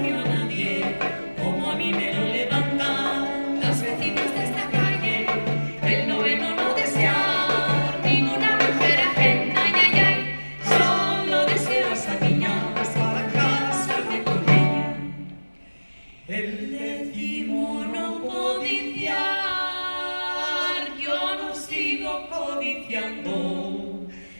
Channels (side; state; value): both; inverted; correlation -1.00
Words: a nadie, como a mí me lo levantan las vecinas de esta calle. El noveno no desear ninguna mujer ajena, ay, ay, ay, solo deseo a esa niña para casarme con ella. El décimo no codiciar, yo no sigo codiciando,